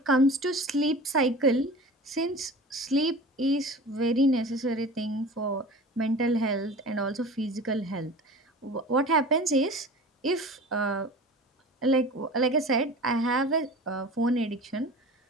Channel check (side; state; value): both; normal; correlation 0.37